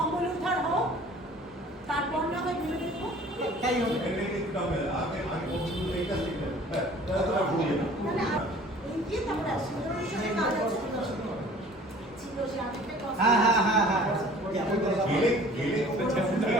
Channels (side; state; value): both; normal; correlation 0.49